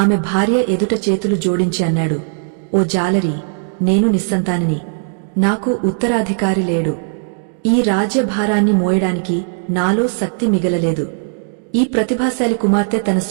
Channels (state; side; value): silent; left; digital silence